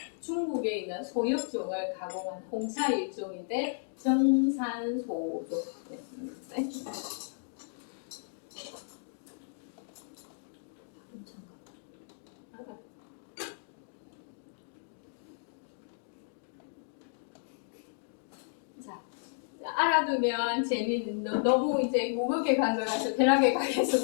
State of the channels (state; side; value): silent; right; digital silence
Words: 중국에 있는 소역종을 가공한 홍차 일종인데 정산소종. 네. 알아두면 재밌는, 너무 이제 무겁게 간 것 같아서 편하게